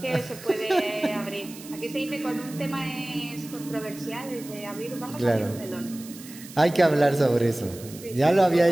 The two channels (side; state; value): right; noise; hiss, 17 dB below the sound